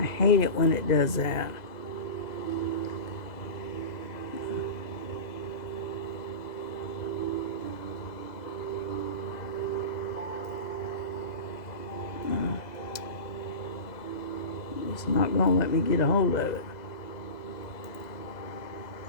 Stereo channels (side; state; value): right; late; 2.0 ms